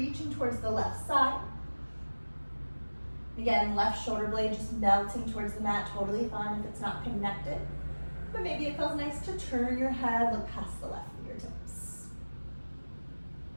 towards the left side. Again, left shoulder blade just melting towards the mat, totally fine if it's not connected. But maybe it feels nice to turn your head, look past the left fingertips.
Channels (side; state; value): both; inverted; correlation -1.00